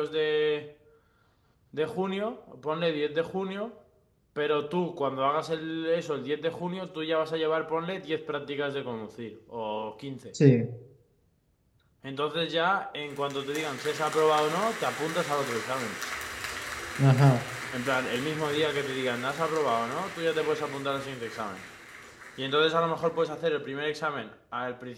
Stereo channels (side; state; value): both; identical; correlation 1.00